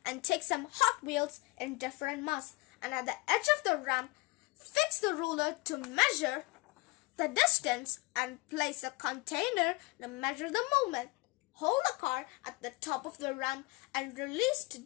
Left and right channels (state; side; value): quieter; right; 23.9 dB